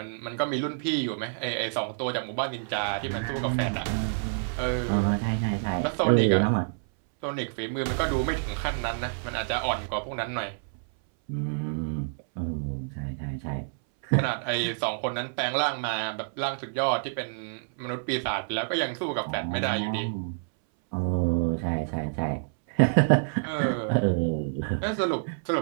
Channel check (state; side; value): silent; left; 59 dB below the other